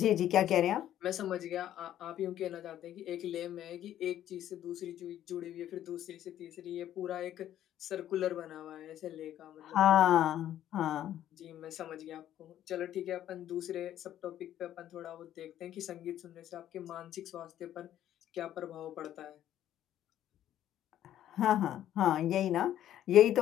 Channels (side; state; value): right; quieter; 11.8 dB